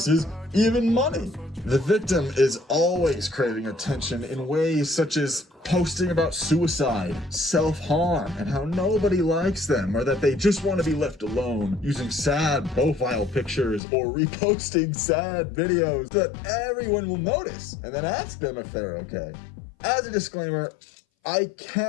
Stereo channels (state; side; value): drops out; right; at 13.8 s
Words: even money. The victim is always craving attention in ways such as posting about suicide, self-harm, and how nobody likes them, or that they just want to be left alone, using sad profile pictures or reposting sad videos that everyone will notice and then ask them if they're okay. As a disclaimer, I